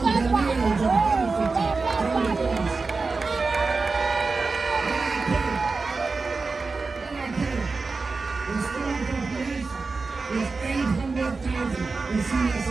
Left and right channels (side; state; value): left; quieter; 4.1 dB